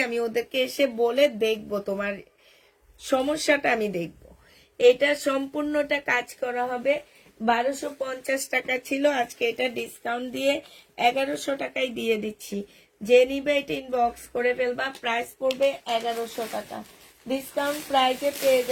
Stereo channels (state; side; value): identical; both; correlation 1.00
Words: আমি ওদেরকে এসে বলে দেখবো তোমার সমস্যাটা, আমি দেখব। এটা সম্পূর্ণটা কাজ করা হবে। 1250 টাকা ছিল, আজকে এটা ডিসকাউন্ট দিয়ে 1100 টাকায় দিয়ে দিচ্ছি। যে নিবে এটা ইনবক্স করে ফেলবা। প্রাইস পড়বে 1100 টাকা। ডিসকাউন্ট প্রাইসে পেয়ে